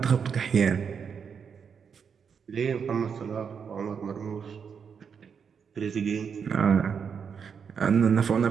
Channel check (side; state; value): left; quieter; 6.7 dB